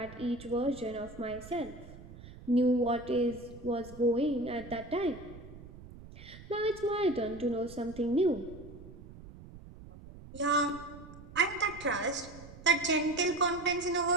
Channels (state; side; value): noise; right; rumble, 17 dB below the sound